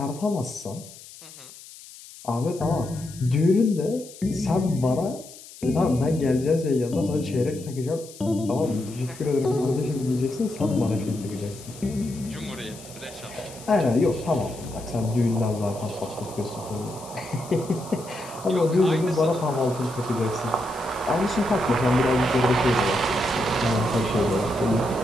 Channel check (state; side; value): noise; left; hiss, 18 dB below the sound